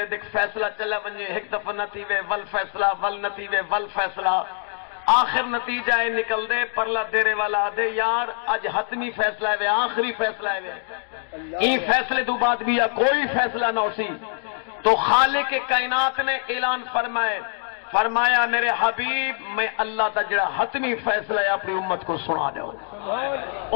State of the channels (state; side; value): silent; right; digital silence